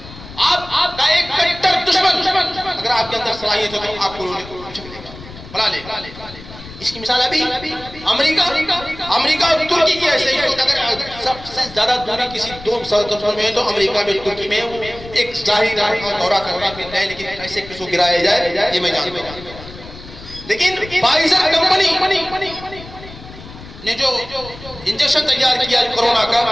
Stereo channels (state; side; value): noise; left; rumble, 16 dB below the sound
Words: آپ کا ایک کٹر دشمن اگر آپ کے اندر صلاحیت ہے تو آپ کو اچک لے گا، بلا لے گا. اس کی مثال ابھی امریکہ اور ترکی کی ایسے ہی. اگر سب سے زیادہ دوری کسی 2 مسلسل میں ہے تو امریکہ میں ترکی میں ایک ظاہری دورہ کرنا پھرنا ہے، لیکن کیسے کس کو گرایا جائے یہ میں جانتا ہوں. لیکن فائزر کمپنی نے جو انجیکشن تیار کیا کورونا